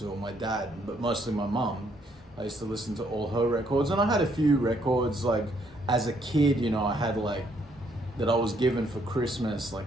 or my dad, but mostly my mum. I used to listen to all her records, and I had a few records as a kid, I had that I was given for Christmas,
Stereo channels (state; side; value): normal; both; correlation 0.70